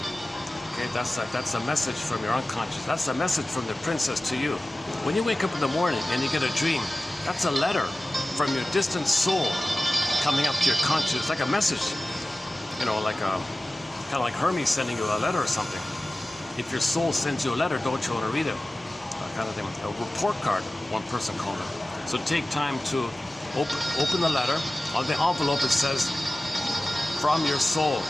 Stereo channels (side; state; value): both; normal; correlation 0.96